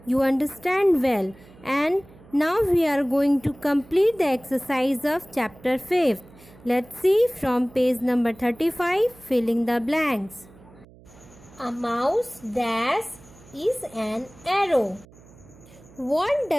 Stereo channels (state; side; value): noise; right; hum, 24 dB below the sound